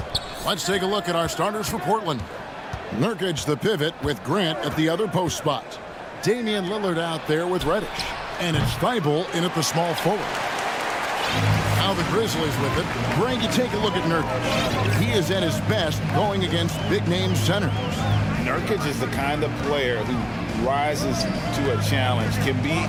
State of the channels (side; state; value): both; identical; correlation 1.00